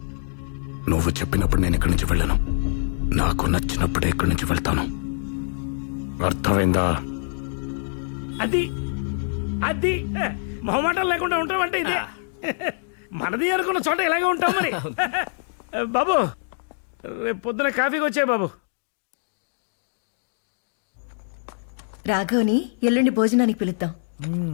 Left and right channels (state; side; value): silent; right; digital silence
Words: నువ్వు చెప్పినప్పుడు నేను ఇక్కడి నుంచి వెళ్ళను. నాకు నచ్చినప్పుడే ఇక్కడి నుంచి వెళ్తాను. అర్థమైందా? అది అది మొహమాటం లేకుండా ఉంటామంటే ఇదే. మనది అనుకున్న చోట ఇలాగే ఉంటాం మరి. బాబు, రేపు పొద్దున కాఫీకి వచ్చాయి బాబు. రాఘవ్ని ఎల్లుండి భోజనానికి పిలుద్దాం.